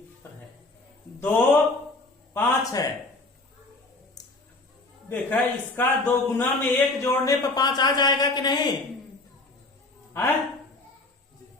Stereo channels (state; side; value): quieter; right; 3.0 dB